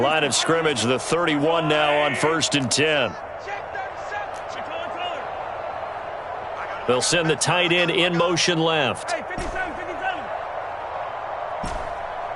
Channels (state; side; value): identical; both; correlation 1.00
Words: of scrimmage, the 31 now on 1st and 10. They'll send the tight end in motion left.